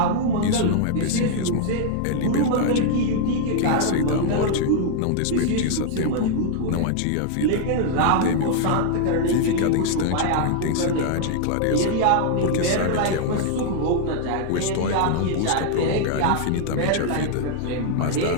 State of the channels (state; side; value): different; both; correlation 0.00